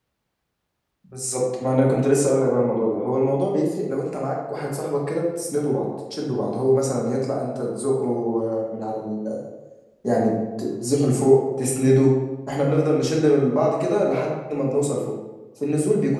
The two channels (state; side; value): identical; both; correlation 1.00